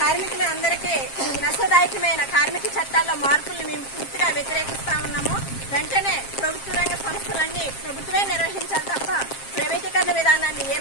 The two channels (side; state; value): right; late; 7.5 ms